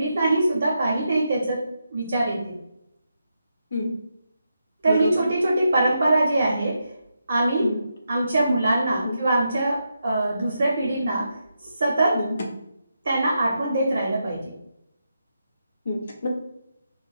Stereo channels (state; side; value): inverted; both; correlation -0.84